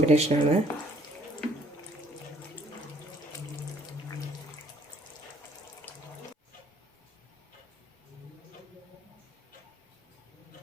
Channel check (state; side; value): normal; both; correlation 0.61